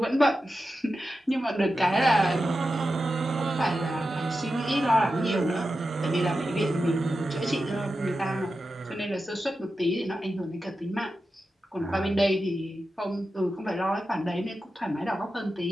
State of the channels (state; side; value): normal; both; correlation 0.91